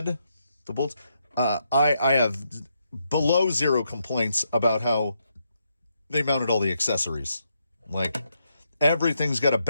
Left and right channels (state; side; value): inverted; both; correlation -0.79